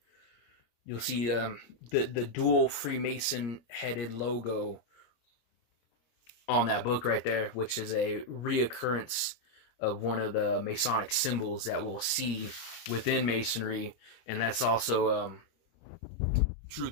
you'll see the dual Freemason headed logo on that book right there, which is a reoccurrence of one of the Masonic symbols that we'll see within Masonry. And that's also, truth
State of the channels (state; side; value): late; right; 25 ms